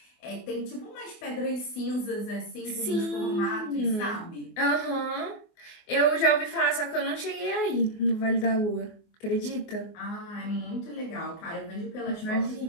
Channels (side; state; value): right; late; 24 ms